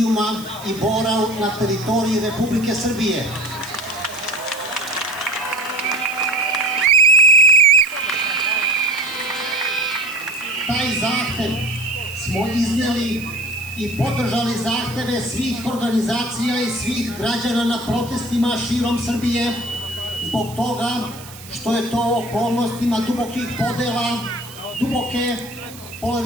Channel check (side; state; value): right; noise; hiss, 17 dB below the sound